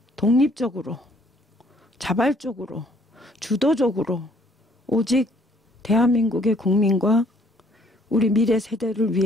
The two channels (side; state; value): both; normal; correlation 0.62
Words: 독립적으로 자발적으로 주도적으로 오직 대한민국의 국민과 우리 미래 세대를